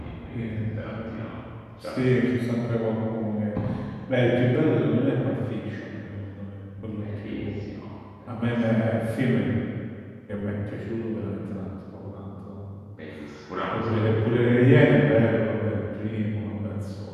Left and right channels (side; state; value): both; identical; correlation 1.00